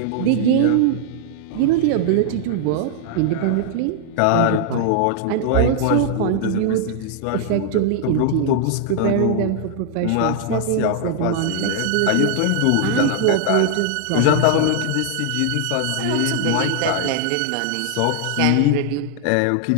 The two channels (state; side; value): different; both; correlation 0.00